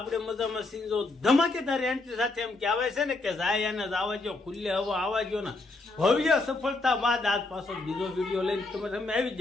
મજામાં સીજો ધમાકેદાર એન્ટ્રી સાથે એમ કહેવાય છે ને કે જાય અને આવા જો ખુલ્લે હવા આવા જો ને ભવ્ય સફળતા બાદ આજ પાછો બીજો વિડીયો લઈને તમે આવી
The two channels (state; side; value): quieter; right; 3.3 dB